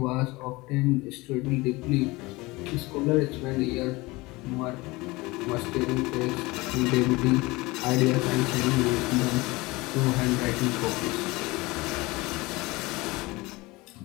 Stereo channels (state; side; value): quieter; right; 22.4 dB